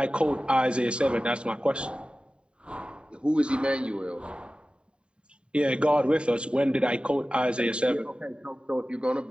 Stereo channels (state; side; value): late; left; 0.053 ms